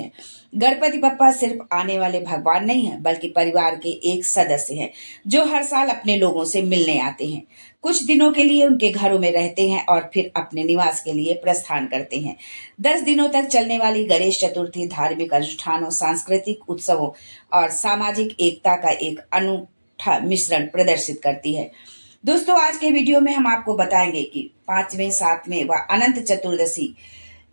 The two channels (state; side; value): inverted; both; correlation -1.00